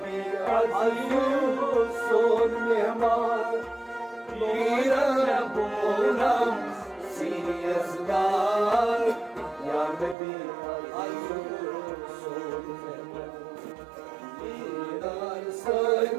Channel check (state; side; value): drops out; left; at 10.2 s